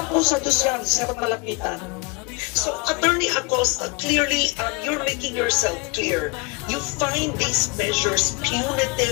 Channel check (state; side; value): quieter; right; 29.3 dB